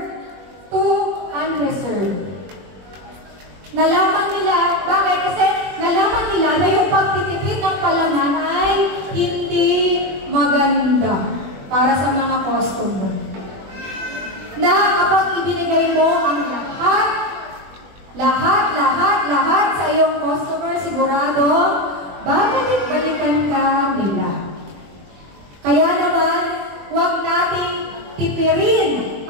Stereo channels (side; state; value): left; late; 21 ms